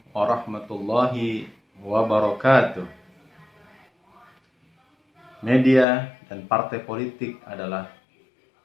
warahmatullahi wabarakatuh. Media dan partai politik adalah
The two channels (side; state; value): right; drops out; at 5.9 s